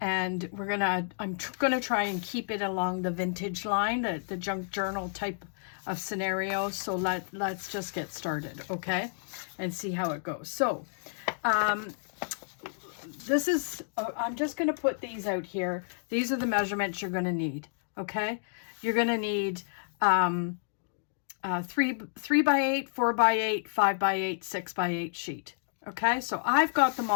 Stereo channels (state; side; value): silent; right; digital silence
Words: going to try and keep it along the vintage line, the junk journal type of scenario. So let's just get started, okay? And see how it goes. So this is, I'm just going to put these out here. These are the measurements you're going to need, okay? You're going to need 3 by 8, 4 by 8, 5 by 8, 6 by 8 sheet. Okay, so I've got them